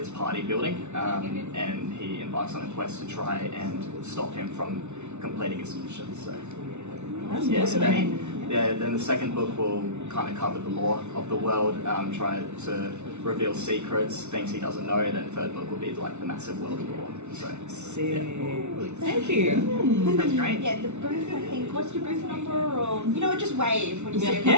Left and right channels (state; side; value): late; left; 0.82 ms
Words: party building, and he embarks on a quest to try and stop him from completing his mission. So, then the second book will kind of cover the lore of the world, try to reveal secrets, things he doesn't know, and then the third book will be like the massive world lore. So, Thank you. That's great. Yeah, the booth, I think, what's your booth number? Or, you know what, just wave when you see it.